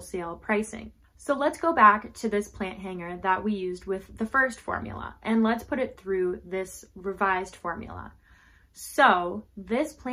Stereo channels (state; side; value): identical; both; correlation 1.00